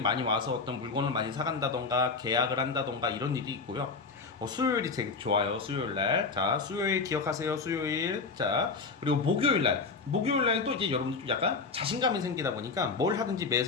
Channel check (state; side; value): quieter; right; 4.4 dB